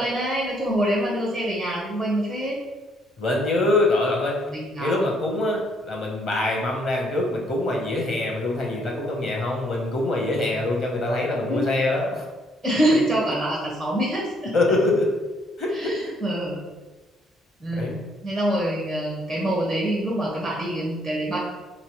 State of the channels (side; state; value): both; normal; correlation 0.68